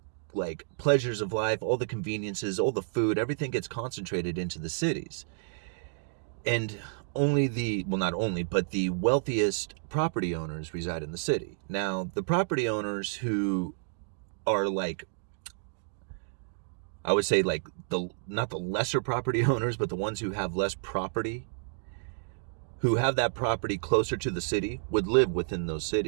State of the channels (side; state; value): left; silent; digital silence